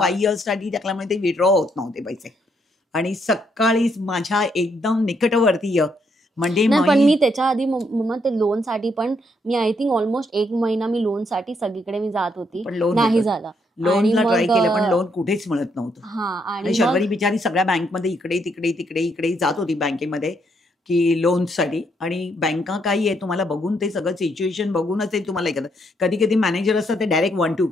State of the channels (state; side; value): normal; both; correlation 0.74